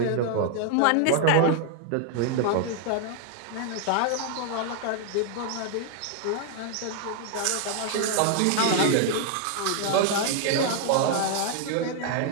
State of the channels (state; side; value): different; both; correlation 0.00